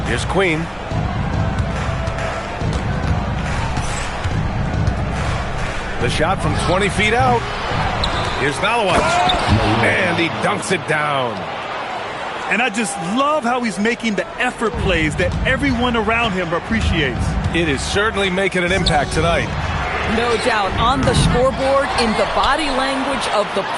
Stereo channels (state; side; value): identical; both; correlation 1.00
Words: Here's Queen. The shot from 20 feet out. Here's Malawach. And he dunks it down. And I just love how he's making the effort plays that everyone around him appreciates. It is certainly making an impact tonight. No doubt. On the scoreboard, in the body language of the